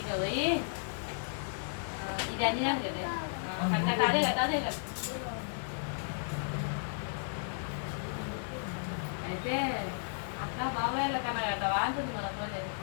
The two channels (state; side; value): silent; right; digital silence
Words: పోయి ఇది అన్ని కదా అదే కదా అదే కదా. అయితే అక్క బాబాయ్ల కన్నా కదవా అంటుంది మన పోయి.